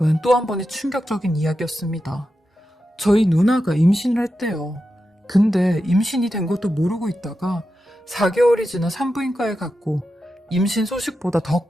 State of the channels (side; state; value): both; normal; correlation 0.90